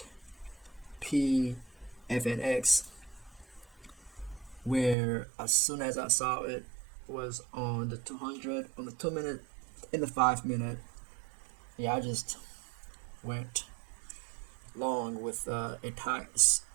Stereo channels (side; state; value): left; drops out; at 5.0 s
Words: PFNX, where as soon as I saw it was on the 200, on the 2-minute, in the 5-minute, yeah, I just went long with a tight